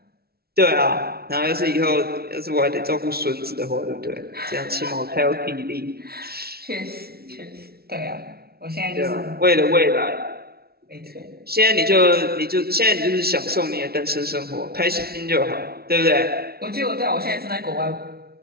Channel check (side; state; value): left; late; 0.45 ms